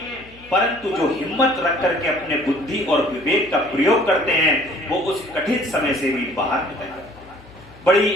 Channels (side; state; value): left; noise; hum, 23 dB below the sound